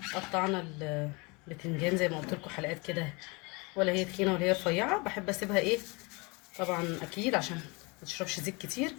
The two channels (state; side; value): quieter; right; 27.8 dB